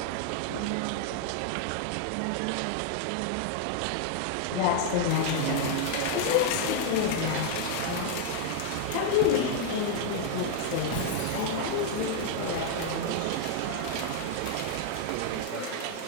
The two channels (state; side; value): different; both; correlation 0.00